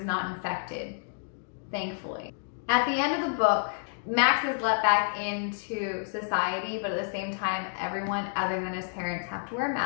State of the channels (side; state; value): right; silent; digital silence